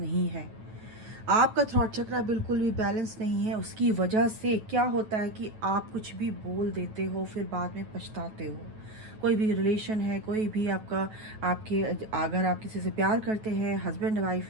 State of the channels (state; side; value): late; left; 9.3 ms